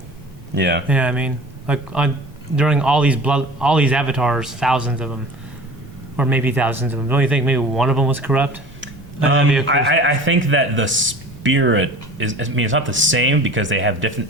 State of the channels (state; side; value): normal; both; correlation 0.41